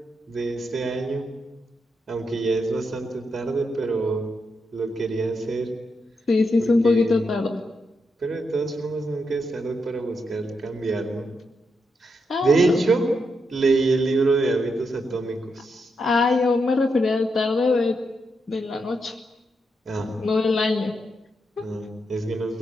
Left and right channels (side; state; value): both; normal; correlation 0.83